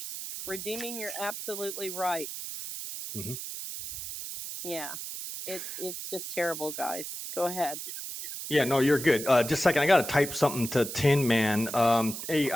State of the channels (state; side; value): noise; right; hiss, 7 dB below the sound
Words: Redeeming, you're absolutely right. Yeah, it's just terrible, guys. Go ahead. Yeah, no, you're good. Just a second, I got to type something to Tin Man. Hey,